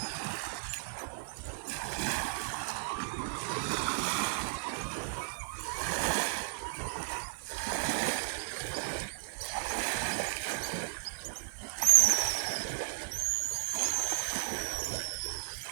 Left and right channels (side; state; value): left; silent; digital silence